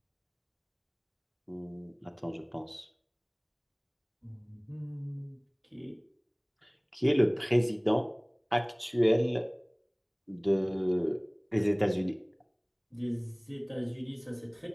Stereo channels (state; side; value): identical; both; correlation 1.00